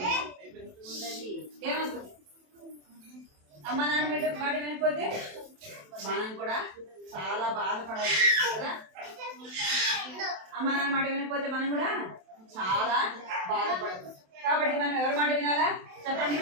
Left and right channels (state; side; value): late; left; 27 ms